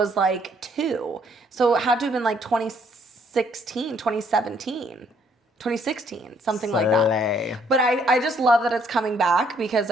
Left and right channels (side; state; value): both; normal; correlation 0.66